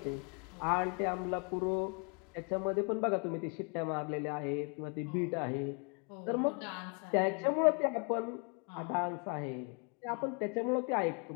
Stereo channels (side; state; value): right; quieter; 37.1 dB